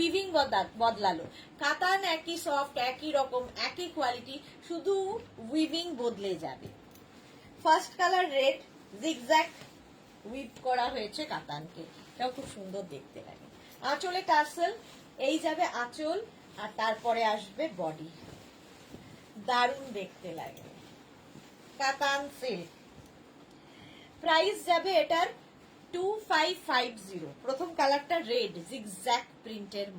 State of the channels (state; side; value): identical; both; correlation 1.00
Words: বদলালো। কাতান একই সফট, একই রকম, একই কোয়ালিটি, শুধু উইভিং বদলে যাবে। First colour red, zigzag we've করা হয়েছে কাতানকে, এটাও খুব সুন্দর দেখতে লাগে। আঁচলে টাসেল, এই যাবে আঁচল আর তারপরে আসবে বডি, দারুণ দেখতে লাগে। কাতান সিল্ক। প্রাইস যাবে এটার 2550 প্রথম কালারটা রেড জিগজ্যাগ প্রিন্টের